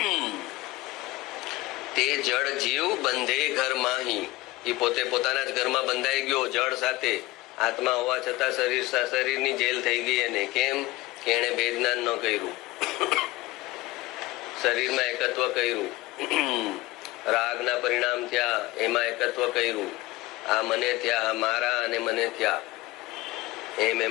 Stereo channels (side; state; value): right; quieter; 19.6 dB